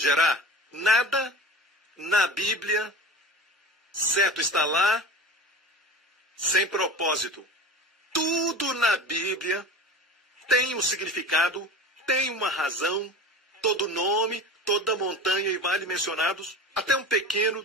Nada na Bíblia, certo, está lá sem propósito. Tudo na Bíblia tem um significado, tem uma razão, todo nome, toda montanha e vale mencionados, até um pequeno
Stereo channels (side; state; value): both; normal; correlation 0.33